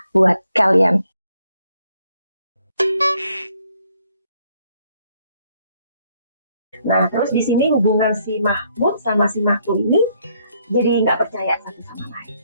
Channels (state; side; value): inverted; both; correlation -0.69